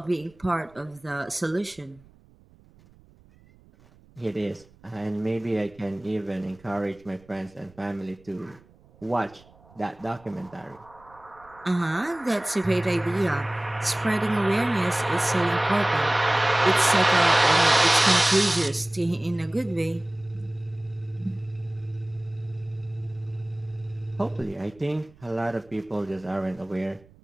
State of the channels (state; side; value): noise; right; rumble, 27 dB below the sound